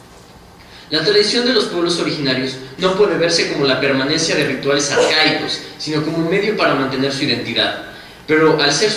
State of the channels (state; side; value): identical; both; correlation 1.00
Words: La tradición de los pueblos originarios no puede verse como la permanencia de rituales arcaicos, sino como un medio para mantener su identidad. Pero al ser